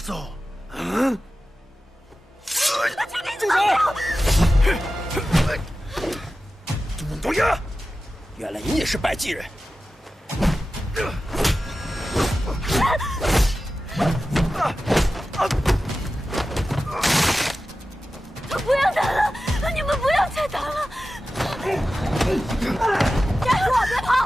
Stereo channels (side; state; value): both; normal; correlation 0.94